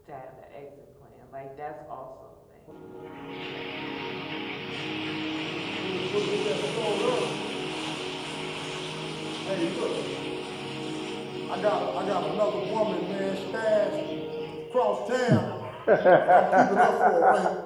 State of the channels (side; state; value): both; identical; correlation 1.00